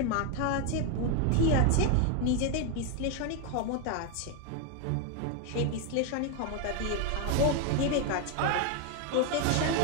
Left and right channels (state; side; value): different; both; correlation 0.01